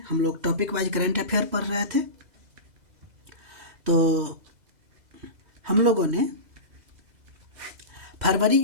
हम लोग टॉपिक वाइज करंट अफेयर पढ़ रहे थे। तो हम लोगों ने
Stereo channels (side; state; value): left; late; 2.0 ms